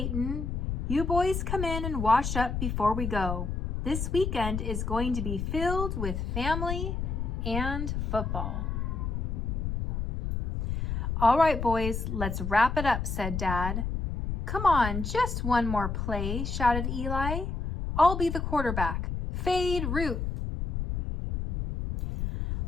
You boys come in and wash up before we go. This weekend is going to be filled with family and football." "All right, boys, let's wrap it up," said Dad. "Come on, just one more play," shouted Eli. "I'll be the quarterback. Fade route."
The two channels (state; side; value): noise; left; rumble, 2 dB below the sound